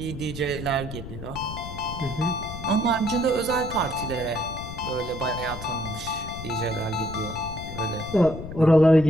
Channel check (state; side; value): noise; left; rumble, 10 dB below the sound